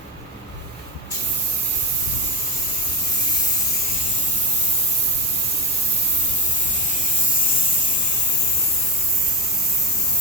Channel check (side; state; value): both; normal; correlation 0.15